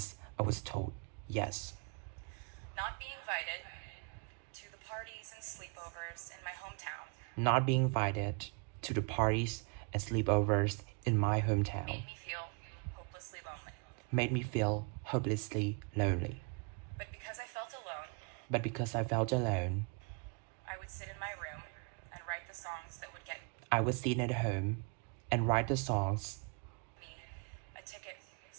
I was told yes. Not being invited to the parties and sleepovers in my hometown Not being invited to the parties and sleepovers in my hometown made me feel hopelessly lonely. made me feel hopelessly lonely. But because I felt alone, But because I felt alone, I would sit in my room and write the songs that would get I would sit at home and write the songs me a ticket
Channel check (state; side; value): quieter; left; 35.8 dB